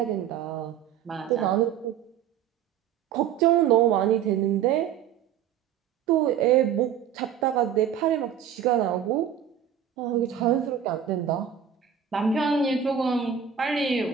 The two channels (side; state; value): left; quieter; 8.8 dB